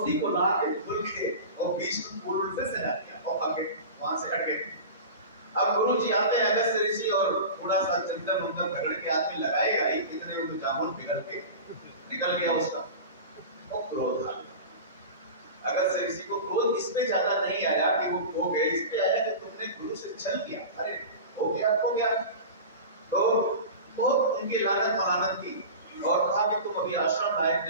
को ला के धुल के और बीच में फूल उल्टे से सजा दिया और आगे वहां से हट गए। अब गुरु जी आते हैं अगस्त ऋषि और थोड़ा सा चंदन उंदन रगड़ के आदमी लगाएगा ही, कितने में तो जामुन पिघल के निकल गया उसका, और क्रोध आ गया। अगस्त ऋषि को क्रोध इसमें ज्यादा नहीं आया कि वो खो गए, इसमें आया कि तुमने गुरु से छल किया, अरे हो गया। तो बहुत उनकी लानत मलानत की और कहा कि तुम अभी आश्रम लायक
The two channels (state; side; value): inverted; both; correlation -0.31